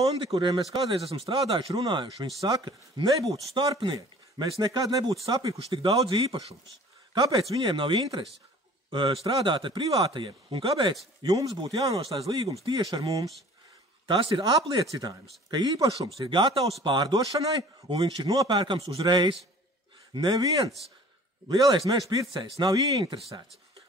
kuriem mēs kādreiz esam strādājuši, runājuši, viņi saka, nebūtu starpnieki, mēs nekad nebūtu sapirkuši tik daudz īpašums. Kāpēc viņiem nav interesi strādāt ar privātajiem un kāpēc jums būtu jānoslēdz līgums tieši ar mums? Tas ir apliecinājums, ka īpašums ir gatavs pārdošanai un viņš ir nopērkams uzreiz. Neviens lielais meža pircējs nav ieinteresēts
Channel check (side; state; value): both; normal; correlation 0.48